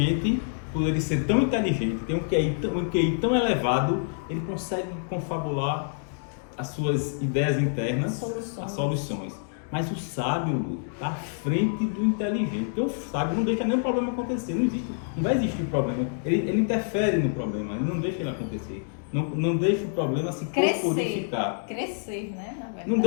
por ele ser tão inteligente, tem um QI tão elevado, ele consegue confabular as suas ideias internas, as soluções. Mas o sábio está à frente do inteligente. Porque o sábio não deixa nenhum problema acontecer. Não vai existir problema. Ele interfere no problema, ele não deixa ele acontecer. Não deixa o problema se corporificar. Crescer, né? Na verdade. Não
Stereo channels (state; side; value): silent; right; digital silence